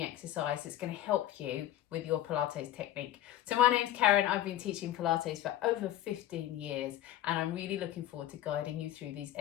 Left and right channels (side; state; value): right; quieter; 13.2 dB